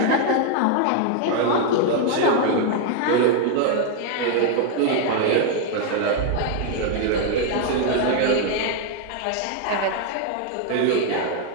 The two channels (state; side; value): different; both; correlation 0.00